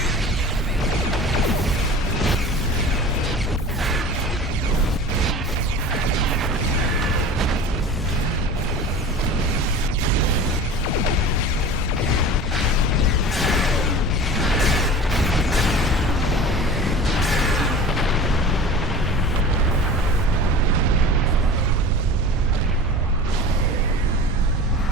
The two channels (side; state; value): both; normal; correlation 0.37